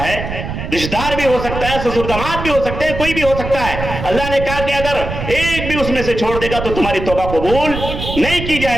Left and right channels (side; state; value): right; noise; rumble, 6 dB below the sound